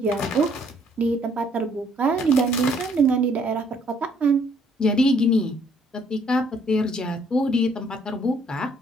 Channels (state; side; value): normal; both; correlation 0.64